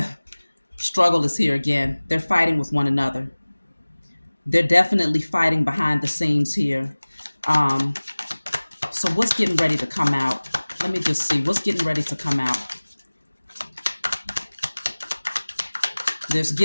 struggle is here again. They're fighting with one another. They're definitely fighting behind the scenes here. So what's getting ready to come out? Let me just see. What's getting ready to come out? There's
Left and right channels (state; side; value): inverted; both; correlation -1.00